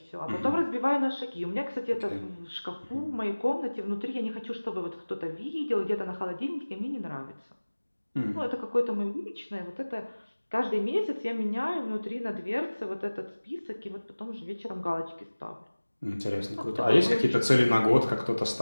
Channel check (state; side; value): inverted; both; correlation -1.00